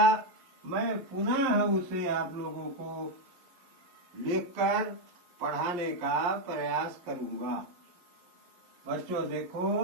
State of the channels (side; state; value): left; late; 11 ms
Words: मैं पुनः उसे आप लोगों को लिखकर पढ़ाने का प्रयास करूंगा। बच्चों